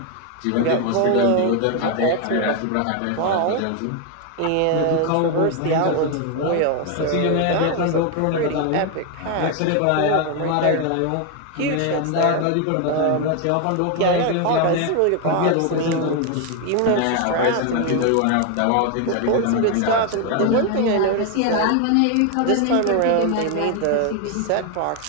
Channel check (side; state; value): both; different; correlation 0.01